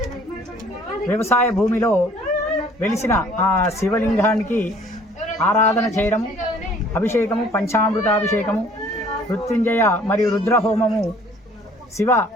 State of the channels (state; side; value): normal; both; correlation 0.56